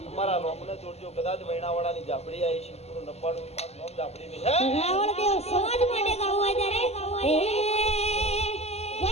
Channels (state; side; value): late; right; 0.30 ms